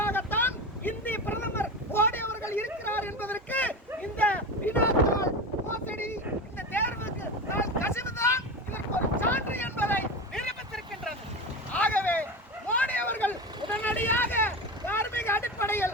இந்திய பிரதமர் மோடி அவர்கள் இருக்கிறார் என்பதற்கு இந்த வினாத்தாள் மோசடி, இந்த தேர்வுக்கு கசிவுதான் இதற்கு ஒரு சான்று என்பதை நிரூபித்திருக்கின்றது. ஆகவே மோடி அவர்கள் உடனடியாக தார்மீக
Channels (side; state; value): both; normal; correlation 0.24